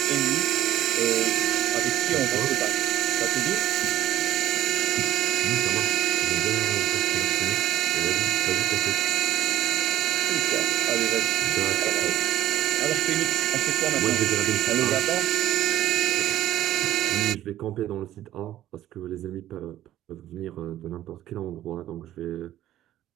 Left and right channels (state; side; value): quieter; left; 13.1 dB